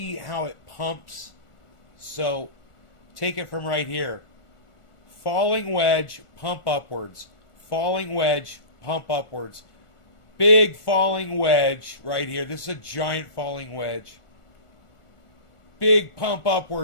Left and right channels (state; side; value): late; right; 1.4 ms